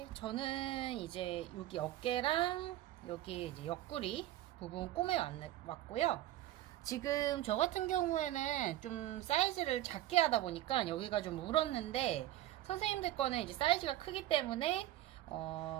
저는 이제 여기 어깨랑 여기 이제 옆구리 부분 왔고요. 지금 저 같은 경우에는 좀 사이즈를 작게 하다 보니까 여기가 좀 울었는데 선생님들 거는 이제 사이즈가 크기 때문에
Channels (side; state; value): left; quieter; 14.5 dB